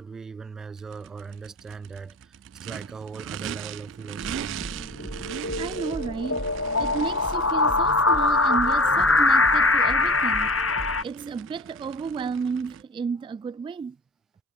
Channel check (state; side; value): normal; both; correlation 0.38